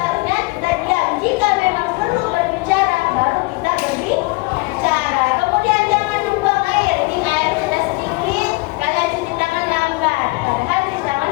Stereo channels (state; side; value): quieter; right; 25.4 dB